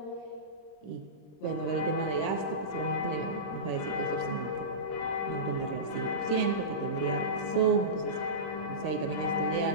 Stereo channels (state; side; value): late; right; 26 ms